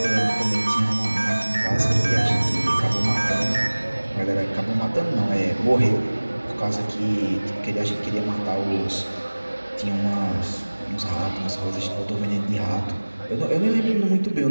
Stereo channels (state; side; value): inverted; both; correlation -1.00